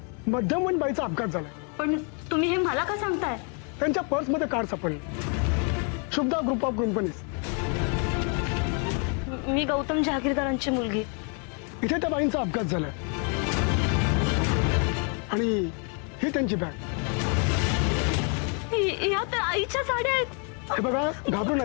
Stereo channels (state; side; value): quieter; right; 38.5 dB